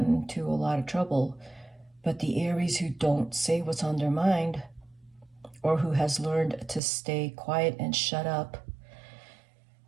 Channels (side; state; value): left; drops out; at 6.8 s